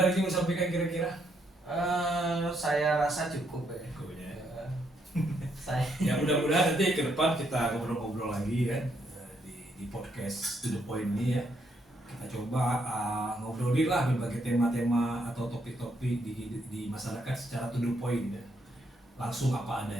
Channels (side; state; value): both; normal; correlation 0.75